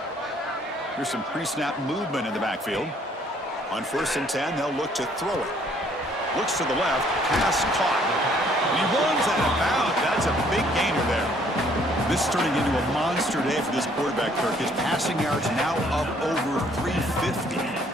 Here's some pre-snap movement in the backfield. On 1st and 10, they'll look to throw it. Looks to the left, pass caught. And he runs out of bounds. That's a big gainer there. This is turning into a monster day for this quarterback, Kirk. His passing yards now up over 350.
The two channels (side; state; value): both; normal; correlation 0.63